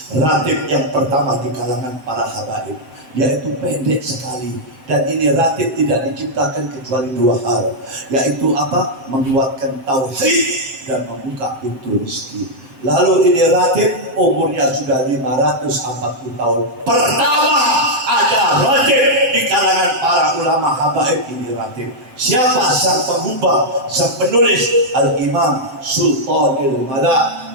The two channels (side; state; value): left; late; 7.7 ms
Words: ratib yang pertama di kalangan para habaib, yaitu pendek sekali. Dan ini ratib tidak diciptakan kecuali dua hal, yaitu apa? Menguatkan tauhid dan membuka pintu rezeki. Lalu ini ratib umurnya sudah 540 tahun. Pertama ada ratib di kalangan para ulama habaib, ini ratib. Siapa sang pengubah, sang penulis? Al-Imam Sultanul Mala